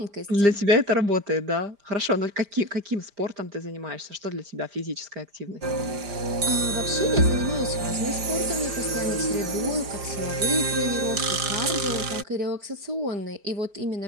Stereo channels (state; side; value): late; left; 5.0 ms